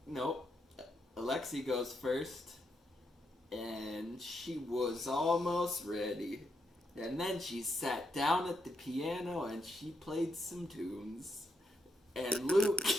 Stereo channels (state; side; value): normal; both; correlation 0.80